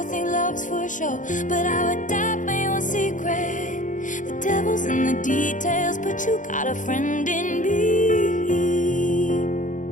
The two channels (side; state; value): right; late; 0.37 ms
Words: think love's for show, but I would die for your secret. The devil's in the details, but you got a friend in me.